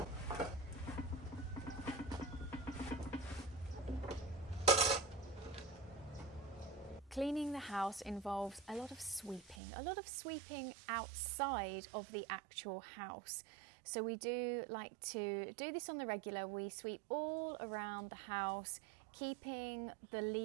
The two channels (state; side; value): drops out; left; at 9.6 s